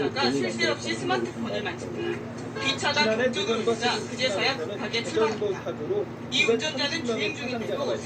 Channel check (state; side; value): identical; both; correlation 1.00